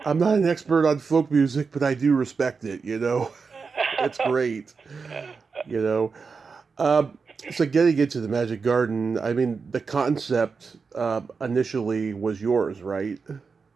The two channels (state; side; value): quieter; left; 5.0 dB